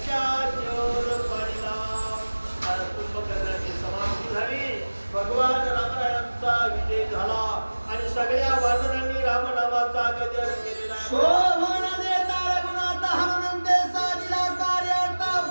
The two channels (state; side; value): inverted; both; correlation -1.00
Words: पाडीला. कुंभकर्णाची समाप्ती झाली, भगवान रामरायांचा विजय झाला आणि सगळ्या वानरांनी रामनामाचा गजर केलेला. शोभन देता रघुनाथ हनुमंते साधिला कार्यार्थ